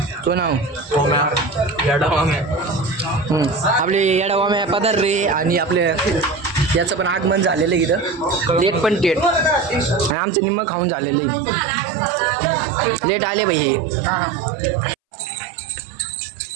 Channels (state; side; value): drops out; left; at 10.2 s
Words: तो नाव आपले येडावाम्या पदार रे आणि आपले याचं पण आगमन झालेलं आहे इथं लेट पण टेट आणि आमचं निम्म खाऊन झालेलं आहे लेट आले भाई